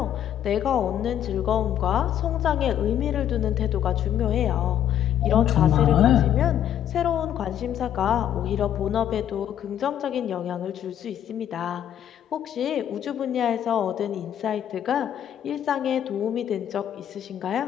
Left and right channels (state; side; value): quieter; right; 10.4 dB